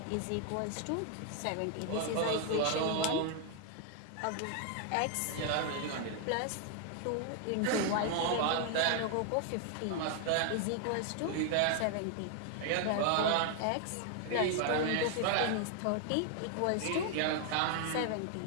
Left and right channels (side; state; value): both; different; correlation 0.00